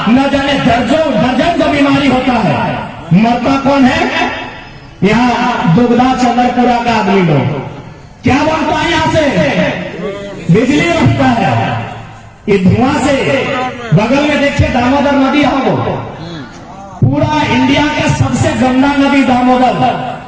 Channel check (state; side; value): identical; both; correlation 1.00